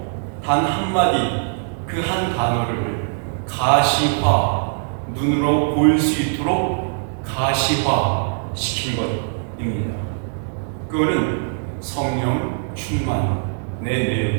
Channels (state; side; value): silent; left; digital silence